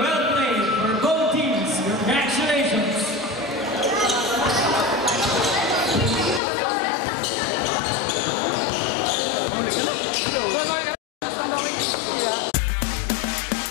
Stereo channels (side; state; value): right; drops out; at 6.4 s